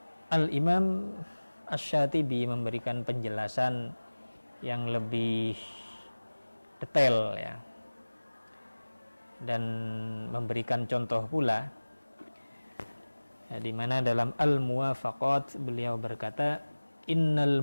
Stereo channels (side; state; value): both; inverted; correlation -1.00